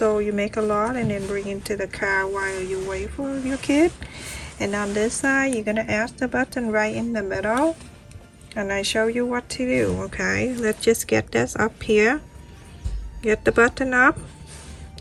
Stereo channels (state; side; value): identical; both; correlation 1.00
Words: you make a lot and then bring it to the car while you wait for your kid. And on this side, you're gonna add the button right in the middle, and I show you what to do. Okay, let's just get this up here. Get the button up,